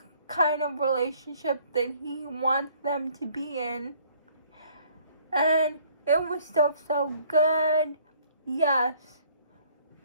kind of relationship that he wants them to be in. And it was still so good. Yes,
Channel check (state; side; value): inverted; both; correlation -0.59